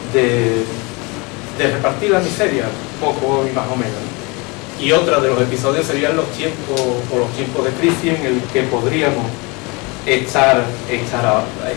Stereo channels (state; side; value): quieter; right; 27.6 dB